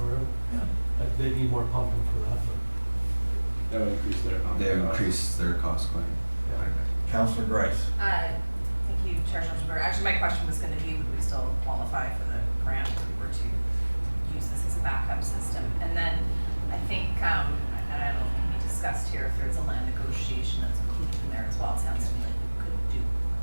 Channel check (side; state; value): both; inverted; correlation -1.00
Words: river? Yeah. They need more pumping for that, but. That would increase their pumping They costs. increase their cost quite a bit. Councilor Grice? Thank you, Chair Schulzenberger. Actually, my question was gonna be, would we still qualify for the grant if we were to use this as a backup system? And then I think, and I don't know if we discussed here, if there's a land negotiation that's included in there as well. It sounds to me like we could do